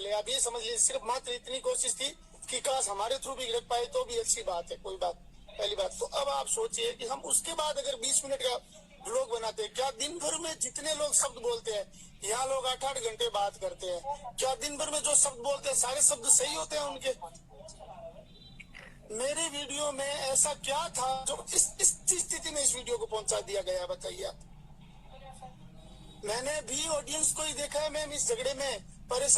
आप ये समझ लीजिए सिर्फ मात्र इतनी कोशिश थी कि काश हमारे थ्रू भी लग पाए तो भी अच्छी बात है, कोई बात। पहली बात तो अब आप सोचिए कि हम उसके बाद अगर 20 मिनट का व्लॉग बनाते हैं, क्या दिन भर में जितने लोग शब्द बोलते हैं, यहाँ लोग 8-8 घंटे बात करते हैं, क्या दिन भर में जो शब्द बोलते हैं सारे शब्द सही होते हैं उनके? मेरे वीडियो में ऐसा क्या था जो इस स्थिति में इस वीडियो को पहुंचा दिया गया, बताइए आप। मैंने भी ऑडियंस को ही देखा है मैम, इस झगड़े में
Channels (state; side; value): identical; both; correlation 1.00